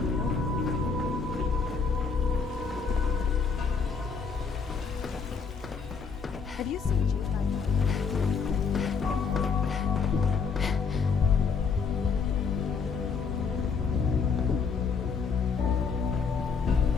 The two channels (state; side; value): quieter; right; 5.4 dB